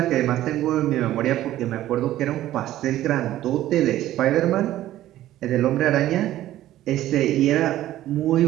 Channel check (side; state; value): left; quieter; 13.9 dB